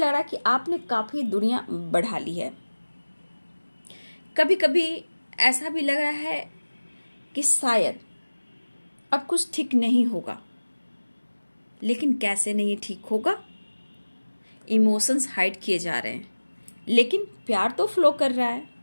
रहा कि आपने काफी दूरियां बढ़ा ली है। कभी कभी ऐसा भी लग रहा है कि शायद अब कुछ ठीक नहीं होगा, लेकिन कैसे नहीं ठीक होगा। इमोशंस हाइड किए जा रहे हैं, लेकिन प्यार तो फ्लो कर रहा है,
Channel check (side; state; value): both; inverted; correlation -1.00